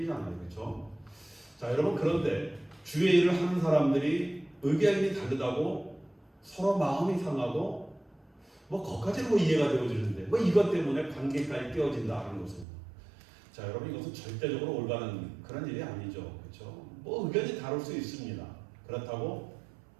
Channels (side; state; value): left; drops out; at 12.7 s